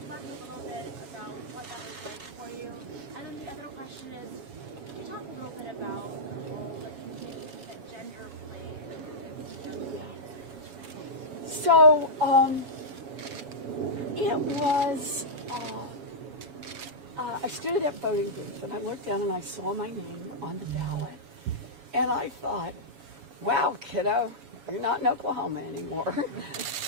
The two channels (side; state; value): left; late; 7.2 ms